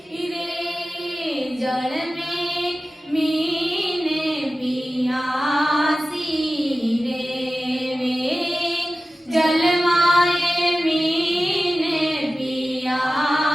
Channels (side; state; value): both; normal; correlation 0.95